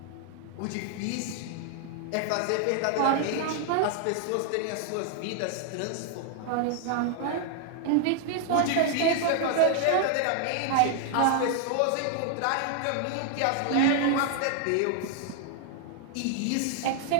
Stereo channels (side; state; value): both; different; correlation 0.00